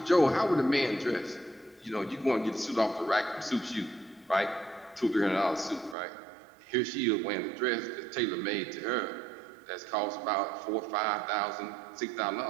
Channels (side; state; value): left; drops out; at 6.0 s